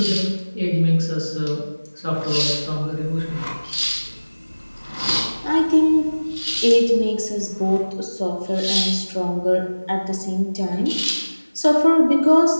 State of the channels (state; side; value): inverted; both; correlation -1.00